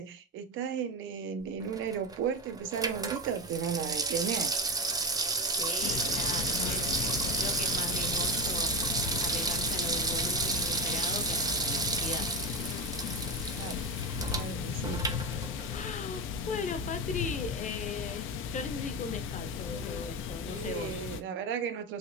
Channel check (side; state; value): both; normal; correlation 0.17